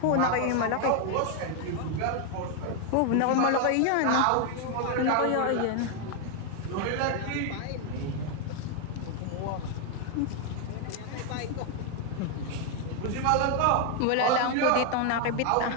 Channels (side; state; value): both; different; correlation 0.00